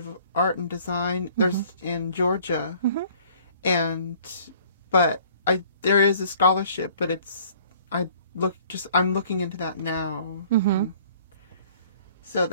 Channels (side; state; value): both; inverted; correlation -0.55